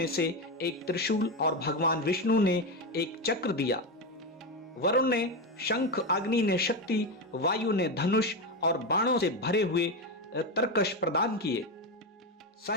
से एक त्रिशूल और भगवान विष्णु ने एक चक्र दिया। वरुण ने शंख, अग्नि ने शक्ति, वायु ने धनुष और बाणों से भरे हुए तरकश प्रदान किए।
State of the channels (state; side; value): normal; both; correlation 0.13